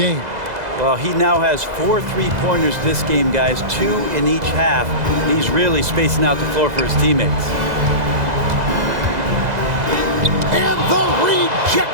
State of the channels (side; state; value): left; late; 2.0 ms